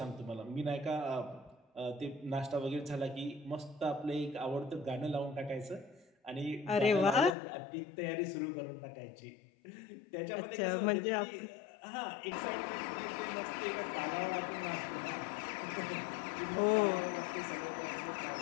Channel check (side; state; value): right; drops out; at 7.3 s